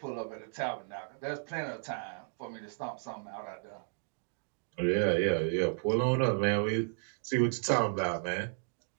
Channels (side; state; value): left; silent; 55 dB below the other